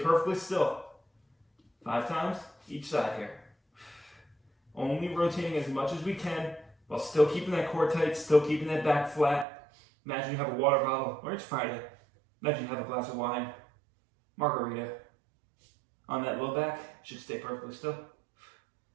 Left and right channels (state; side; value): drops out; left; at 9.5 s